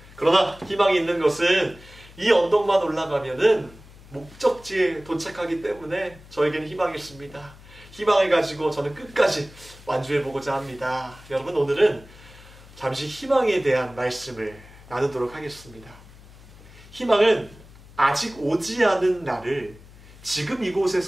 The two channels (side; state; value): left; noise; hum, 21 dB below the sound